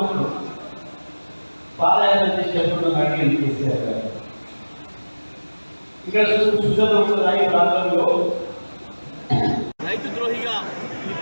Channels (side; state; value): both; inverted; correlation -1.00